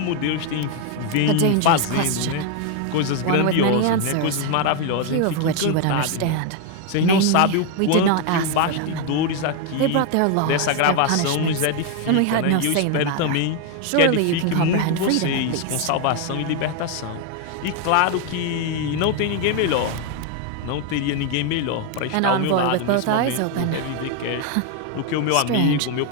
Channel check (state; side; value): different; both; correlation 0.01